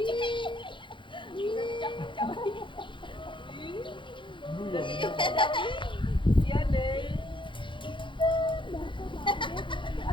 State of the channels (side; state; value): right; late; 0.24 ms